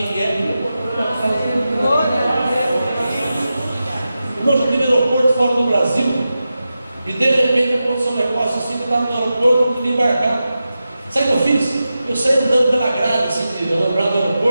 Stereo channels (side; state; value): both; inverted; correlation -0.92